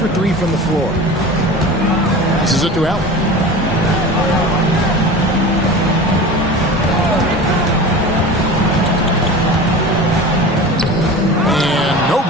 3 from the floor. This is it to Allen. And no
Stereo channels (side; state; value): both; normal; correlation 0.34